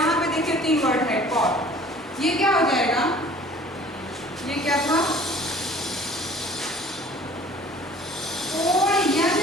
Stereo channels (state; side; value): normal; both; correlation 0.50